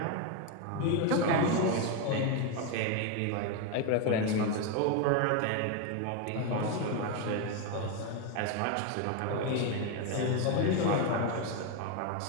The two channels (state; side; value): different; both; correlation 0.02